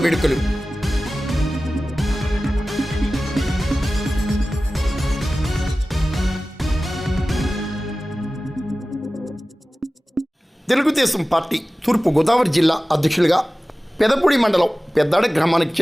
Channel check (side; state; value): both; normal; correlation 0.96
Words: వేడుకలు. తెలుగుదేశం పార్టీ తూర్పు గోదావరి జిల్లా అధ్యక్షులుగా పెదపూడి మండలం పెద్దాడ గ్రామానికి